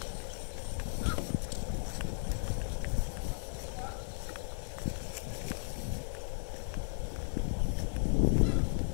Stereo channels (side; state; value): right; silent; digital silence